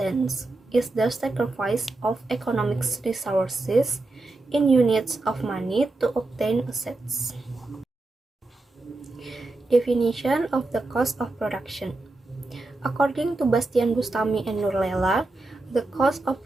is the sacrifice of economic resources in units of money to obtain assets. Definition of the cost of production. According to Bastian Bustami and Nurlela, the cost of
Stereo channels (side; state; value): left; quieter; 3.0 dB